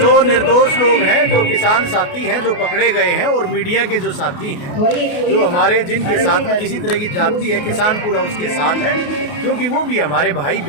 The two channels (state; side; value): late; right; 28 ms